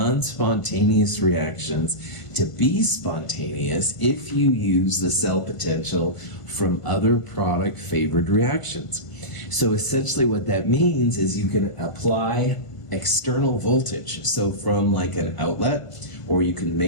reactions to be spontaneous if you use the cell potential from other product-favored reactions. So essentially what that means is you can apply external voltage, so from like an outlet, or you can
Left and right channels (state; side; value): late; right; 1.5 ms